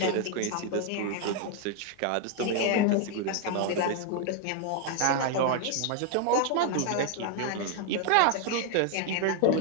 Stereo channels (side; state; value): both; different; correlation 0.01